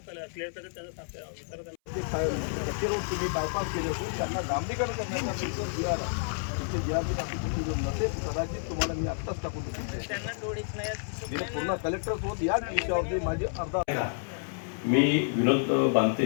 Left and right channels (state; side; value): silent; right; 58 dB below the other